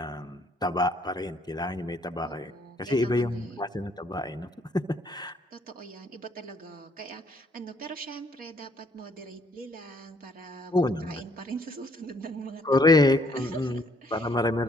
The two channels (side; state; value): both; normal; correlation 0.66